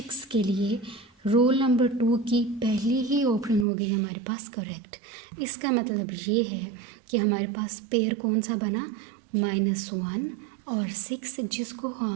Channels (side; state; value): left; drops out; at 3.7 s